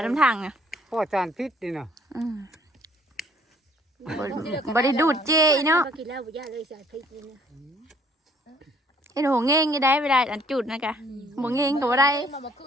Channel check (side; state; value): both; normal; correlation 0.61